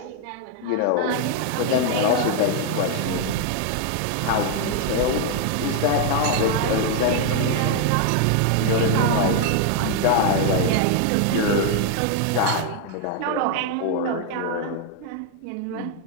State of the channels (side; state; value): both; different; correlation 0.01